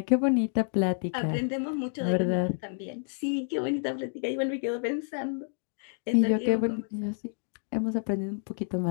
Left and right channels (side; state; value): right; silent; 57 dB below the other